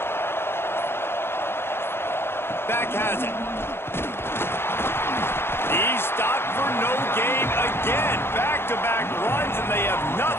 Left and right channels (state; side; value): late; right; 0.11 ms